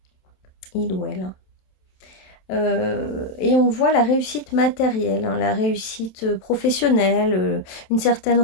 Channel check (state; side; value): late; right; 27 ms